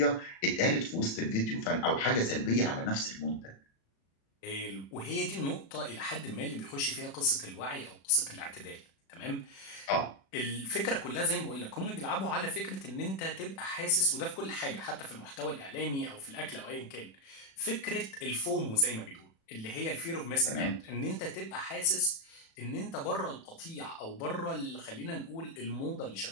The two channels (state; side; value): late; right; 36 ms